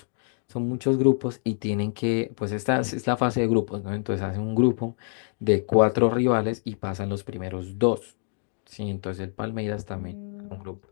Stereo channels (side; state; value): right; silent; 61 dB below the other